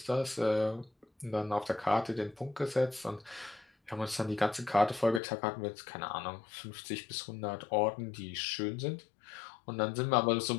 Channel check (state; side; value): drops out; right; at 5.2 s